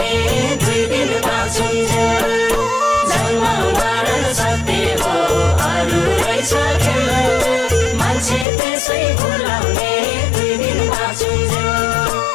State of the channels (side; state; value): right; drops out; at 8.5 s